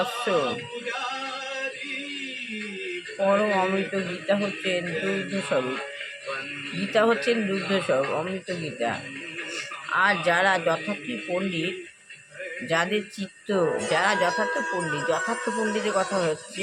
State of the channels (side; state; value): both; identical; correlation 1.00